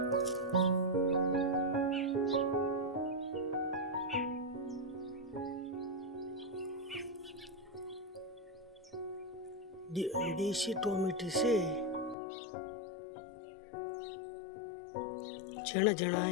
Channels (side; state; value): right; drops out; at 12.2 s